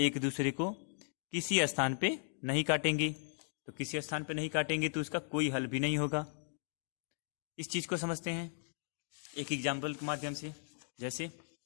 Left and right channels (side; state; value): right; silent; digital silence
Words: दूसरे को किसी स्थान पे नहीं काटेंगी। तो किसी स्थान पे नहीं काटेंगे तो इसका कोई हल भी नहीं होगा। इस चीज को समझते हैं एक एग्जाम्पल के माध्यम से। जैसे